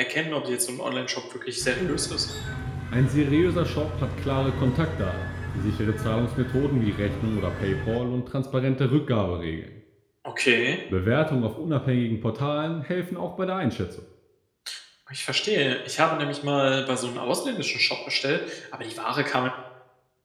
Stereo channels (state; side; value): identical; both; correlation 1.00